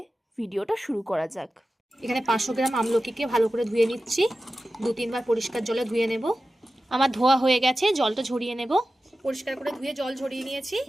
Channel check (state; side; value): normal; both; correlation 0.94